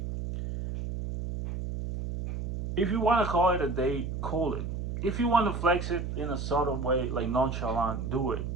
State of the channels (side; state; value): right; noise; hum, 4 dB below the sound